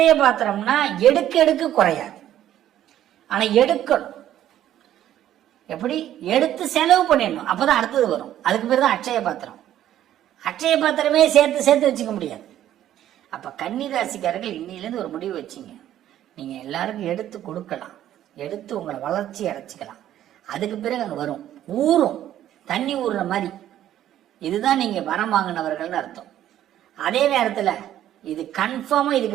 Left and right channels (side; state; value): left; quieter; 12.0 dB